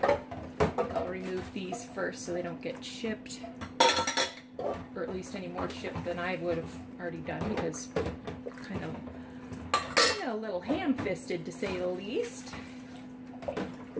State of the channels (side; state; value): both; identical; correlation 1.00